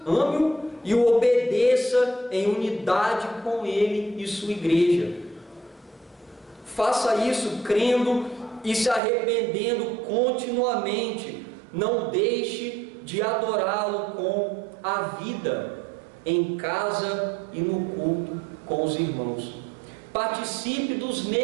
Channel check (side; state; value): left; drops out; at 9.0 s